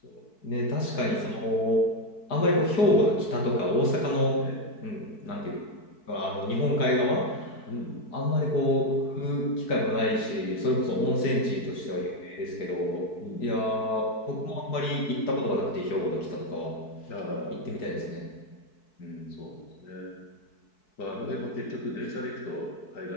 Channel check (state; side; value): late; right; 4.6 ms